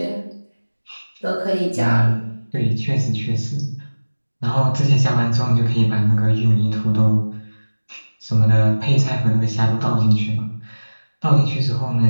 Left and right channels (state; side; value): inverted; both; correlation -1.00